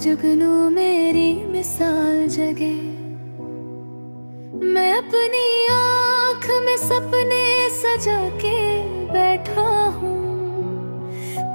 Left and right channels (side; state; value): both; inverted; correlation -1.00